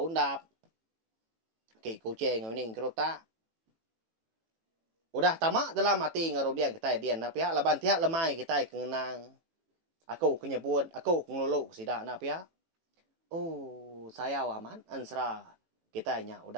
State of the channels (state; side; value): late; left; 18 ms